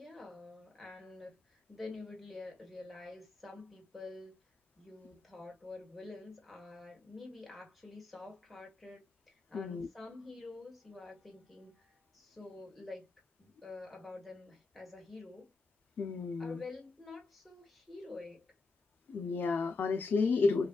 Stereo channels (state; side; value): quieter; right; 3.7 dB